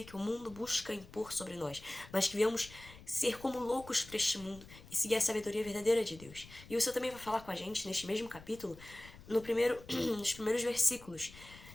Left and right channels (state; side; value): noise; left; rumble, 19 dB below the sound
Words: que o mundo busca impor sobre nós, mas que venhamos ser como loucos para este mundo e seguir a sabedoria verdadeira de Deus. E o Senhor também vai falar com a gente neste mesmo capítulo, nos primeiros versículos,